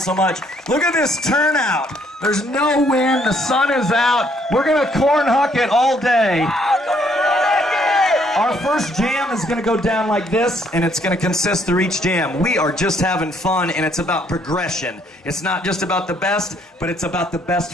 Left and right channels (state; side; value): normal; both; correlation 0.67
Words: much. Look at this turnout. There's no wind. The sun is out. We're going to cornhucket all day. Our first jam is going to go down like this, and it's going to consist through each jam. We are just having fun, and it's about progression. It's not just about the best, but it's about the best